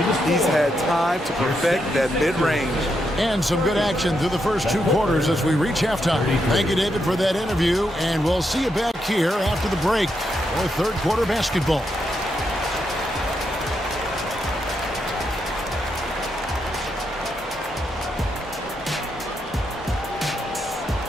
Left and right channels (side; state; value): both; normal; correlation 0.82